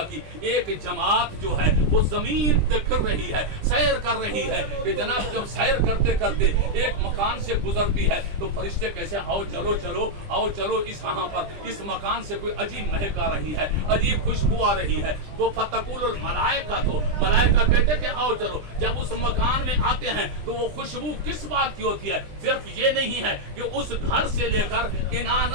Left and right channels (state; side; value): late; left; 20 ms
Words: کی ایک جماعت جو ہے وہ زمین پہ پھر رہی ہے، سیر کر رہی ہے، کہ جناب جب سیر کرتے کرتے ایک مکان سے گزرتی ہے تو فرشتے کیسے آؤ چلو چلو آؤ چلو اس یہاں پر اس مکان سے کوئی عجیب مہک آ رہی ہے، عجیب خوشبو آ رہی ہے، وہ فتقول الملائکہ، تو ملائکہ کہتے کہ آؤ چلو، جب اس مکان میں آتے ہیں تو وہ خوشبو کس بات کی ہوتی ہے؟ صرف یہ نہیں ہے کہ اس گھر سے لے کر انان